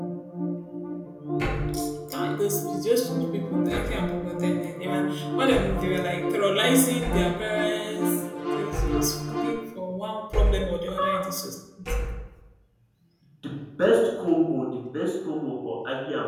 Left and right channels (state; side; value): identical; both; correlation 1.00